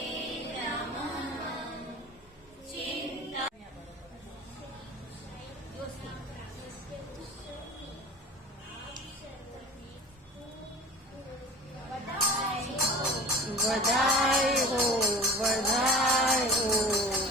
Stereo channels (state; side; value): normal; both; correlation 0.38